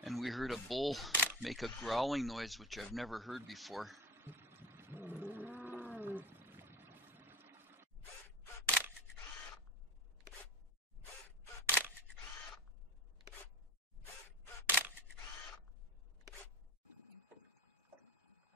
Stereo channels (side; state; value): both; normal; correlation 0.31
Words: And we heard a bull make a growling noise, which I've never heard before.